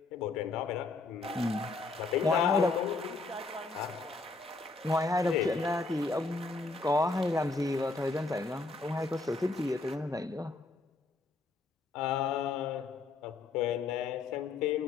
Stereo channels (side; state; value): right; quieter; 3.7 dB